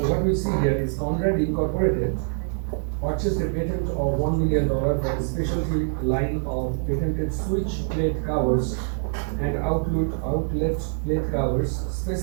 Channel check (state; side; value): silent; left; digital silence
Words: what we see here is Conrad Incorporated purchased a patent of $1 million for a specialty line of patented switch plate covers and outlet plate covers,